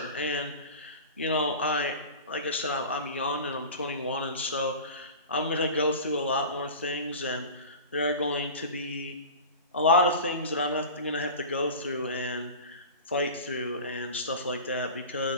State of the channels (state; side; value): inverted; both; correlation -0.34